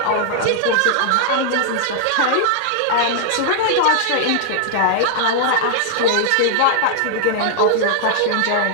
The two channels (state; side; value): different; both; correlation -0.01